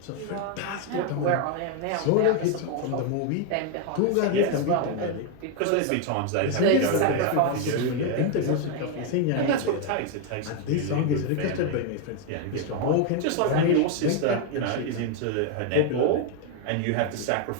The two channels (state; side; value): different; both; correlation 0.01